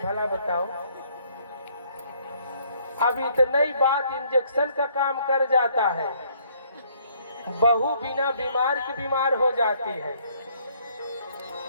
भला बताओ। अब इतना ही बात इंजेक्शन का काम कर जाता है। बहू बिना बीमार के बीमार हो जाती है।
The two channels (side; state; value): both; inverted; correlation -0.65